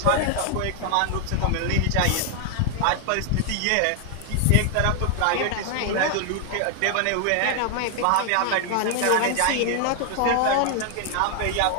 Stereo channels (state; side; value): different; both; correlation 0.00